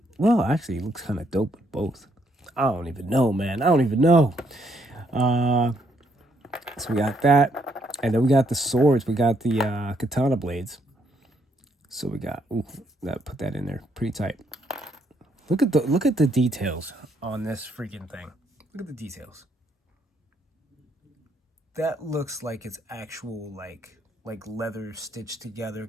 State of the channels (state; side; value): normal; both; correlation 0.72